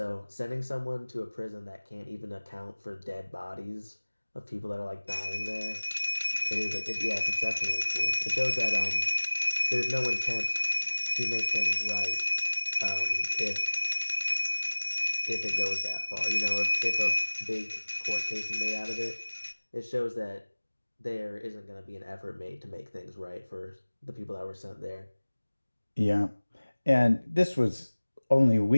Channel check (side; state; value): both; inverted; correlation -1.00